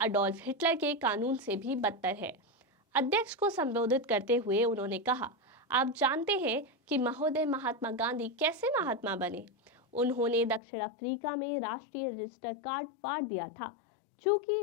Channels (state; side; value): drops out; right; at 10.6 s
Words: अडोल्फ हिटलर के कानून से भी बदतर है। अध्यक्ष को संबोधित करते हुए उन्होंने कहा, आप जानते हैं कि महोदय महात्मा गांधी कैसे महात्मा बने? उन्होंने दक्षिण अफ्रीका में राष्ट्रीय रजिस्टर कार्ड फाड़ दिया था।